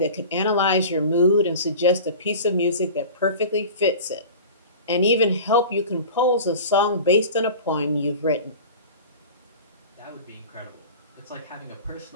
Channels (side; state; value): both; inverted; correlation -0.37